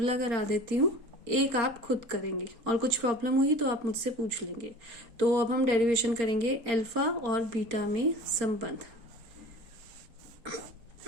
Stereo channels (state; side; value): late; left; 4.3 ms